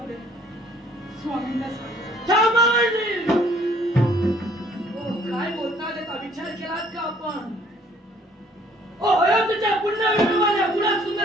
दे. स्वामींना सांग. काय बोलतात याचा विचार केलात का आपण? अयोध्येच्या पुण्यविवाहाने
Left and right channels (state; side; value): normal; both; correlation 0.61